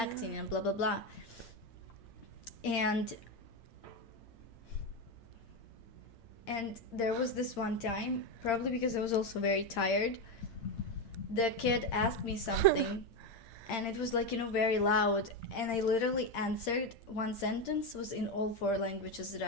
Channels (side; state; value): right; late; 8.7 ms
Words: and blah, blah, blah. And there was this one time, probably because I was also very tired, the kid asked me something and it was very loud, and I literally answered one sentence was in all 4 languages that